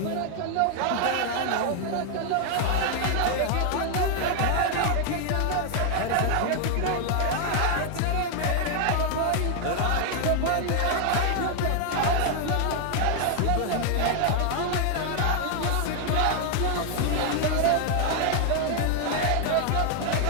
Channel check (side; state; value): both; different; correlation 0.00